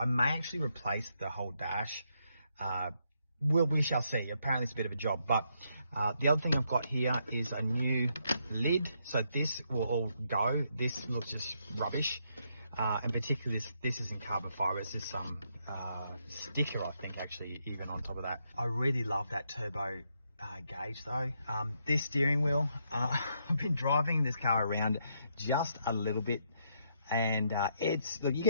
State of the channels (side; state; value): both; inverted; correlation -0.76